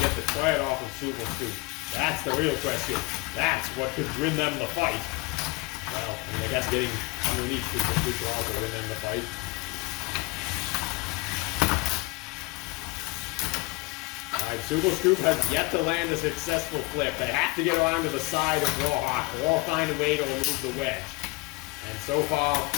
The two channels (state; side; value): quieter; right; 24.2 dB